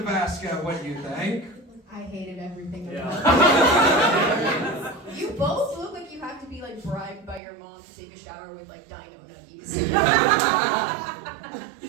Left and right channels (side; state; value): left; drops out; at 7.4 s